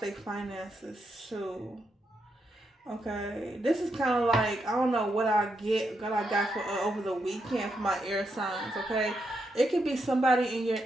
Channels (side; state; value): both; normal; correlation 0.82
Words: finances too. Okay, this is kind of like, I don't know what I got for over the weekend for my air signs. Okay, it could be somebody in your